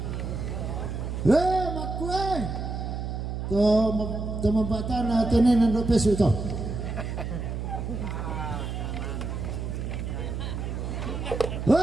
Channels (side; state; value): right; noise; hum, 4 dB below the sound